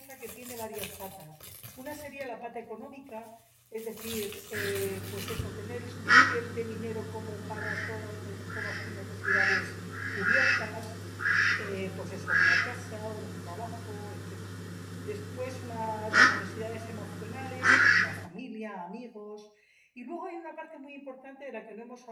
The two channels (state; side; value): identical; both; correlation 1.00